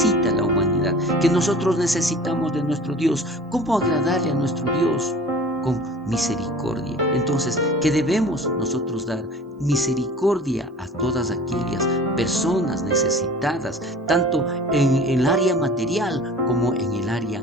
la humanidad, que nosotros necesitamos de nuestro Dios, cómo agradarle a nuestro Dios con misericordia. Entonces, ¿qué debemos nosotros dar? Misericordia a todas aquellas personas necesitadas, tanto en el área material como en el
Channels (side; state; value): both; normal; correlation 0.43